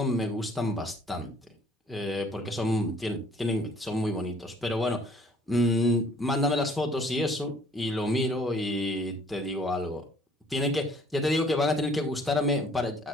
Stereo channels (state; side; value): normal; both; correlation 0.58